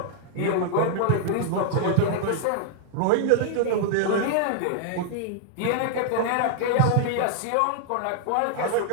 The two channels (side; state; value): both; different; correlation -0.01